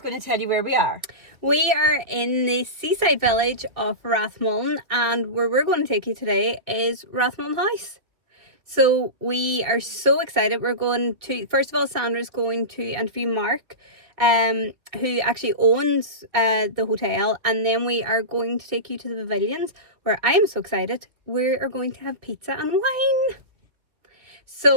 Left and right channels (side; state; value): left; late; 2.5 ms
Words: to tell you where we are. We are in the seaside village of Rathmullan, and where we're going to take you today is Rathmullan House. So we are so excited. We're going to, first of all, Sandra's going to interview Mark, who actually owns the hotel, and then we are going to take you to the Pavilions, where I'm so excited. We are going to have pizza and wine.